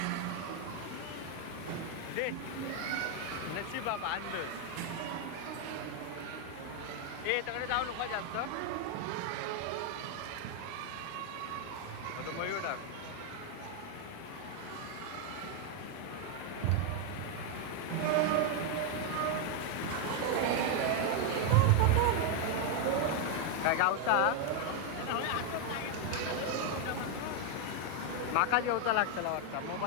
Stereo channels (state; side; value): different; both; correlation 0.01